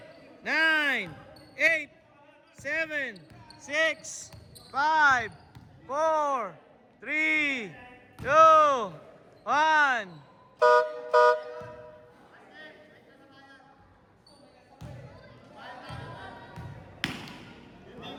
9, 8, 7, 6, 5, 4, 3, 2, 1.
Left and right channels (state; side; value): identical; both; correlation 1.00